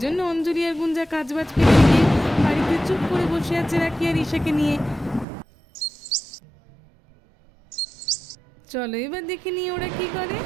জন্য অঞ্জলি আর গুঞ্জা কাজবাজ ফেলে দিয়ে বাড়িতে চুপ করে বসে আছে রাখি আর ঈশাকে নিয়ে। চলো এবার দেখে নিয়ে ওরা কি করে।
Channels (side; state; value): left; drops out; at 5.2 s